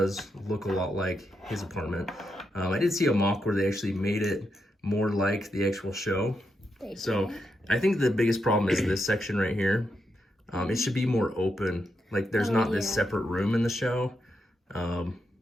look a lot like his apartment. I did see a mock where they actually made it more like the actual show. So I think the biggest problem is this section right here. It should be more open. Like there's not this separate room in the show.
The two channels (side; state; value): both; normal; correlation 0.83